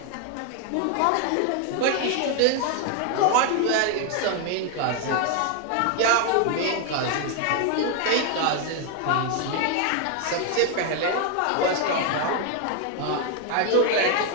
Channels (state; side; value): different; both; correlation 0.01